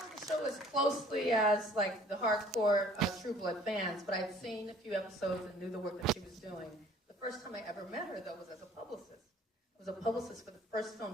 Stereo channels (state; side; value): normal; both; correlation 0.54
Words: the show as closely as like the hardcore True Blood fans, but I'd seen a few episodes and knew the work that she was doing. The first time I ever met her, though, was as a publicist. I was a publicist for the first